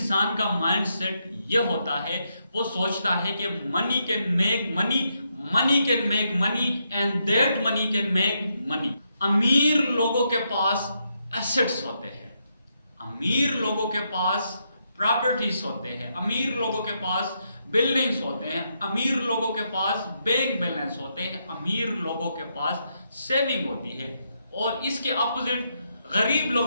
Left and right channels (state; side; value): inverted; both; correlation -0.80